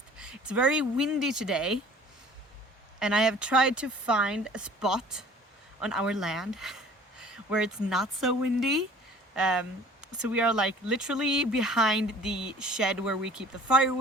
It's very windy today and I have tried to find a spot on our land where it's not so windy. So we are like literally behind the shed where we keep the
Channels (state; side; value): normal; both; correlation 0.49